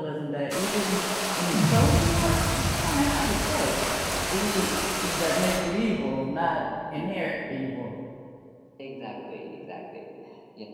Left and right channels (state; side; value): identical; both; correlation 1.00